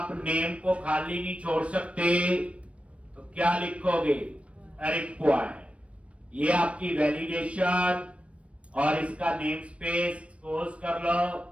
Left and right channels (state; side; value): late; left; 0.062 ms